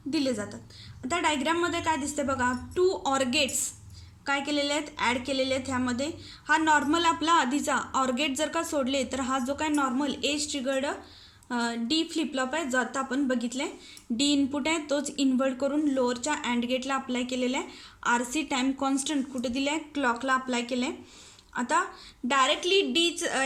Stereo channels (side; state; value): both; identical; correlation 1.00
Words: दिले जातात. आता डायग्राममध्ये काय दिसते बघा, 2 ऑर गेट्स काय केलेले आहेत, ॲड केलेले आहेत. ह्यामध्ये हा नॉर्मल आपला आधीचा ऑर गेट जर का सोडले तर हा जो काय normal age triggered D flip-flop आहे जो आता आपण बघितलं आहे. डी इनपुट आहे तोच इन्व्हर्ट करून लोअरच्या अँड गेटला अप्लाय केलेला आहे. आर सी टाईम कॉन्स्टंट कुठे दिले आहे, क्लॉकला अप्लाय केलं आहे. आता डायरेक्टली डीच